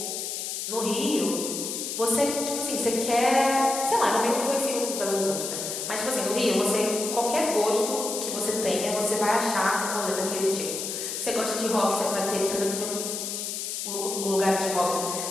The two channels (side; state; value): left; noise; hiss, 4 dB below the sound